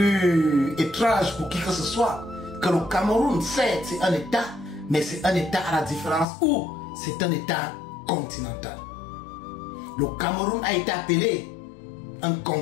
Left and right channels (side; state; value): right; drops out; at 6.2 s